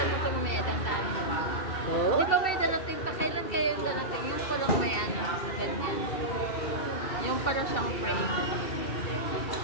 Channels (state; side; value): late; right; 2.7 ms